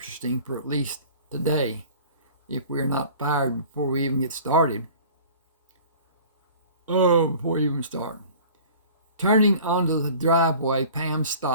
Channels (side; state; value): both; inverted; correlation -0.45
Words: for at least today, if we're not fired before we even get started. Before we even start. Turning onto the driveway, Pam